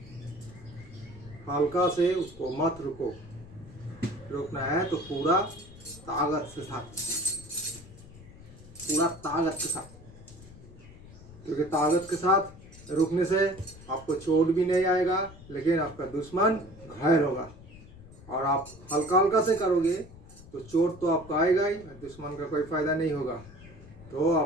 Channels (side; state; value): left; noise; rumble, 19 dB below the sound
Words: हल्का से उसको मत रुको, रोकना है तो पूरा ताकत के साथ, पूरा ताकत के साथ, क्योंकि ताकत के साथ रुकने से आपको चोट भी नहीं आएगा, लेकिन आपका दुश्मन घायल होगा। और आप हल्का हल्का से करोगे तो चोट तो आपको आएगा ही, दुश्मन का कोई फायदा नहीं होगा। तो